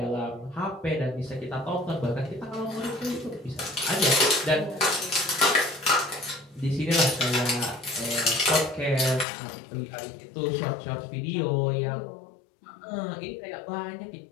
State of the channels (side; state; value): right; drops out; at 9.2 s